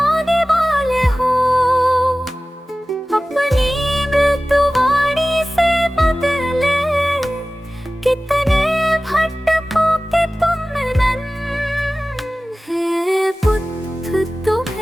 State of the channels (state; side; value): normal; both; correlation 0.97